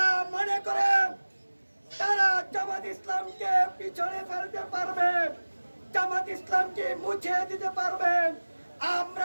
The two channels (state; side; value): inverted; both; correlation -1.00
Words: মনে করে তারা জামাত ইসলামকে পিছনে ফেলতে পারবে, জামাত ইসলামকে মুছে দিতে পারবে,